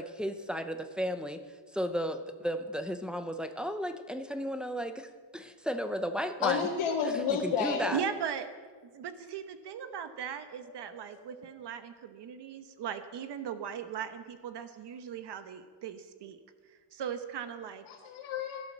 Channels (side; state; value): both; normal; correlation 0.32